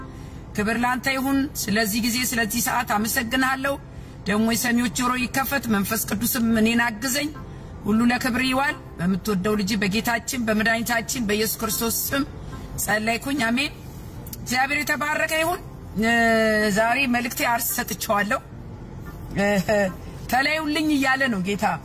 ክብር ላንተ ይሁን ስለዚህ ጊዜ ስለዚህ ሰዓት አመሰግናለሁ ደሞ የሰሚዎች ጆሮ ይከፈት መንፈስ ቅዱስም እኔን አግዘኝ ሁሉ ለክብር ይዋል በመትወደው ልጅ በጌታችን በመድኃኒታችን በኢየሱስ ክርስቶስ ስም ጸለይኩኝ አሜን እግዚአብሔር የተባረከ ይሁን ዛሬ መልእክቴ አርስ ሰጥቻለሁ ተለዩልኝ ይያለ ነው ጌታ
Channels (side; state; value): both; identical; correlation 1.00